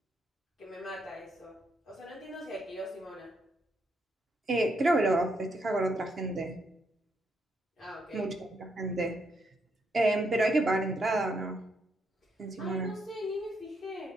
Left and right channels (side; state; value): both; normal; correlation 0.77